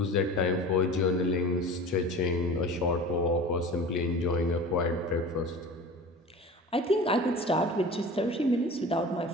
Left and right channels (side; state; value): both; normal; correlation 0.37